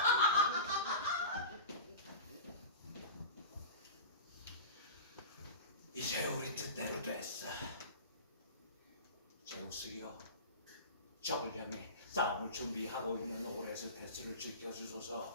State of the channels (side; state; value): both; inverted; correlation -0.33